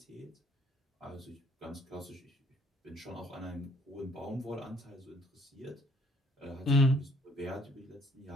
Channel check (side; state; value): both; normal; correlation 0.62